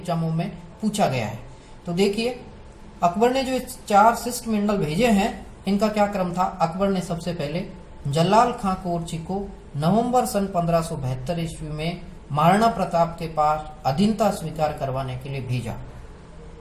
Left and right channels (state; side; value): identical; both; correlation 1.00